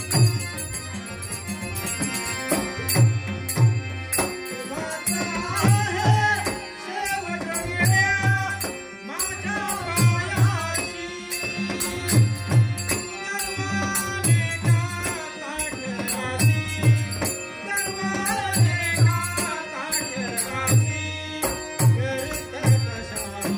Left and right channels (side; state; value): both; identical; correlation 1.00